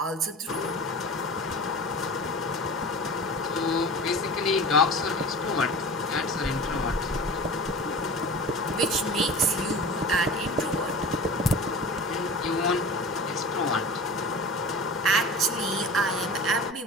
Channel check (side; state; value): both; normal; correlation 0.35